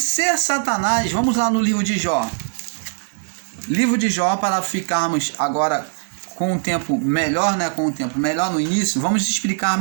Satanás, vamos lá no livro de Jó. Livro de Jó, para ficarmos agora com um tempo melhor, com um tempo melhor no início, vamos explicar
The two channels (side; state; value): left; silent; digital silence